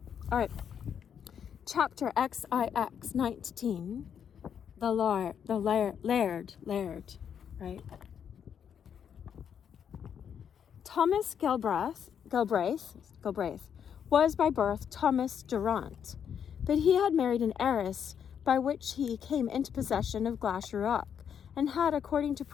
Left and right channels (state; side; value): quieter; right; 8.1 dB